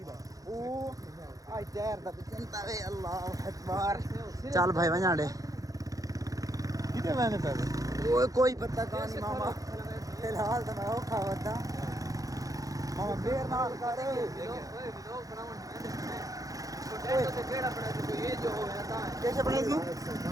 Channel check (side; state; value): left; late; 0.17 ms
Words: ओ आई टायर दा चिंता वे अल्लाह अकबर। चल भाई वणा दे किते मैंने पे ओए कोई पता कहानी मामा फिलहाल तो मैं औखा होता मामा बेर नाल कर कैसे बनेगी